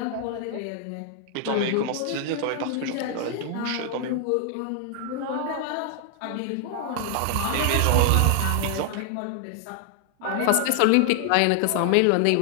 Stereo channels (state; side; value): different; both; correlation 0.00